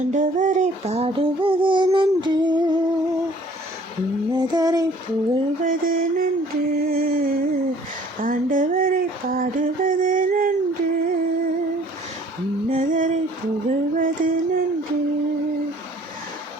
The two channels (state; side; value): normal; both; correlation 0.55